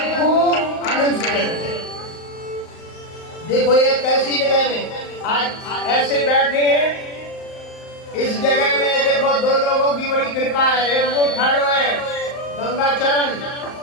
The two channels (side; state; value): right; late; 38 ms